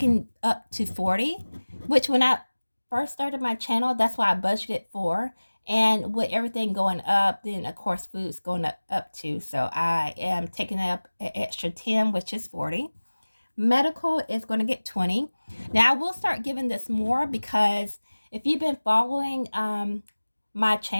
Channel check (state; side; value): inverted; both; correlation -1.00